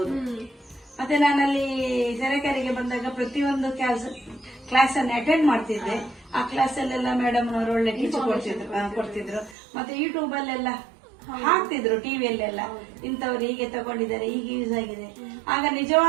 ಮತ್ತೆ ನಾನಲ್ಲಿ ಸರಕಾರಿಗೆ ಬಂದಾಗ ಪ್ರತಿಯೊಂದು ಕ್ಲಾಸ್ ಅನ್ನು ಅಟೆಂಡ್ ಮಾಡ್ತಿದ್ದೆ. ಆ ಕ್ಲಾಸ್ ಅಲ್ಲೆಲ್ಲ ಮೇಡಮ್ ನವರು ಒಳ್ಳೆ ಟೀಚ್ ಕೊಡ್ತಿದ್ರು. ಮತ್ತೆ ಯೂಟ್ಯೂಬ್ ಅಲ್ಲೆಲ್ಲ ಹಾಕ್ತಿದ್ರು, ಟಿವಿಯಲ್ಲೆಲ್ಲ ಇಂಥವ್ರು ಹೀಗೆ ತಗೊಂಡಿದ್ದಾರೆ, ಹೀಗೆ ಯೂಸ್ ಆಗಿದೆ. ಆಗ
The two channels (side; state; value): left; drops out; at 9.6 s